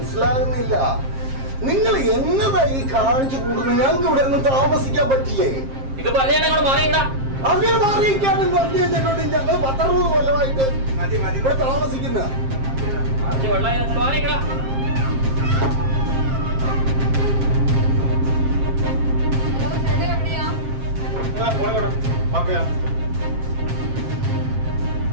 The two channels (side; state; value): left; late; 7.5 ms